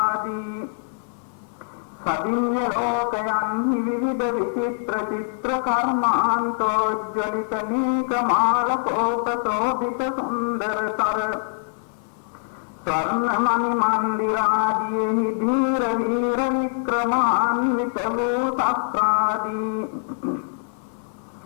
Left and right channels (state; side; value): silent; right; 63 dB below the other